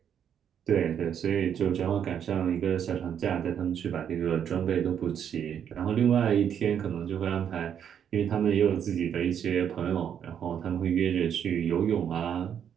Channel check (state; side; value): quieter; left; 8.7 dB